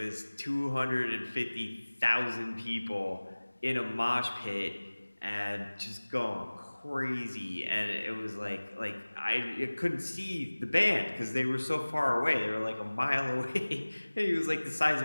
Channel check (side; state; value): both; inverted; correlation -1.00